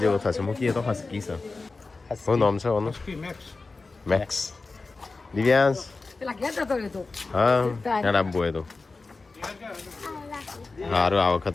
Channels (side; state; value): right; quieter; 3.8 dB